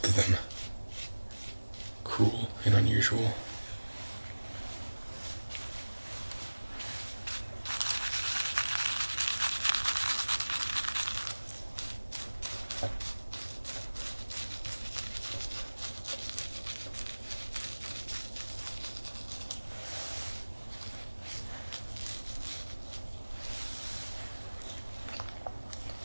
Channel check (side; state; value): both; inverted; correlation -1.00